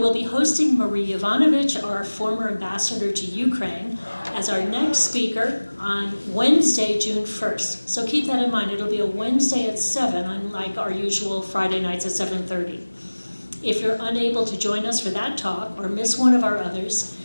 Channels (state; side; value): inverted; both; correlation -1.00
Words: be hosting Marie Yovanovitch, our former ambassador to Ukraine, as our next speaker on Wednesday, June 1st. So keep that in mind. It'll be a Wednesday at 7, unlike our usual Friday nights at 7:30. If you're unable to join us for that talk or miss one of our others,